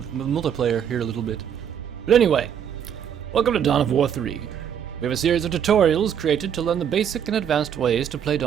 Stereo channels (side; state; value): left; quieter; 8.6 dB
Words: here a little bit. But anyway, welcome to Dawn of War 3. We have a series of tutorials created to learn the basic and advanced ways to play